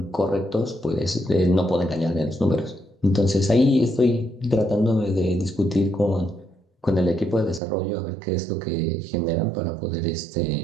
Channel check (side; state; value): left; drops out; at 7.6 s